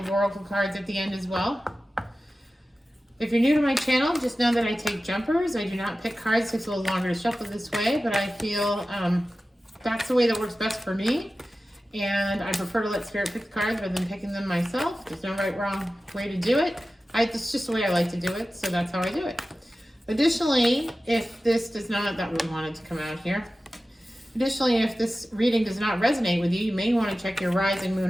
Oracle cards at the end as well. If you're new to my channel, just know that I take jumpers. I do not pick cards. It takes a little longer to shuffle this way, but I feel that's the way that works best for me. And I prefer to let Spirit pick the cards rather than picking them myself. There's no right, wrong way to do it. It's just the way I like to do it, so that's how I do it. Additionally, if this does not, that would want it to come out here. Additionally, if this reading does not resonate with you, you may want to check your rising, moon,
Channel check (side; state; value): both; normal; correlation 0.95